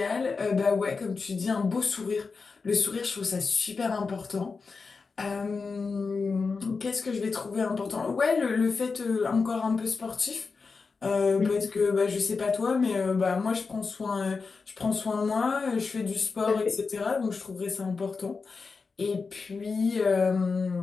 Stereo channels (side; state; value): right; quieter; 4.7 dB